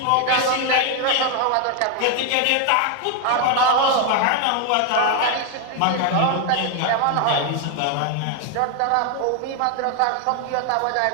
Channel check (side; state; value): both; different; correlation 0.01